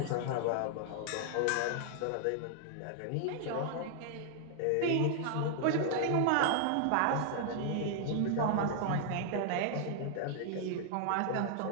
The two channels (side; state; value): both; different; correlation 0.00